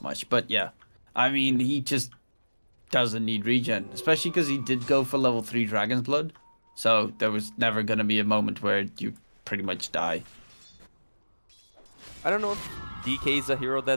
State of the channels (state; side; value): inverted; both; correlation -1.00